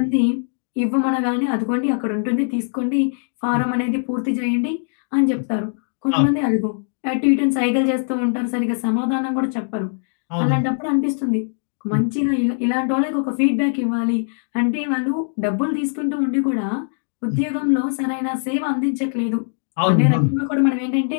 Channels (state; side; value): silent; right; digital silence